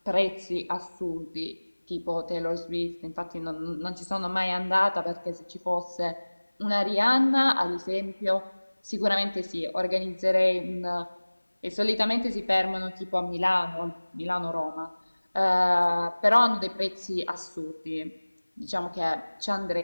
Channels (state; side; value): inverted; both; correlation -1.00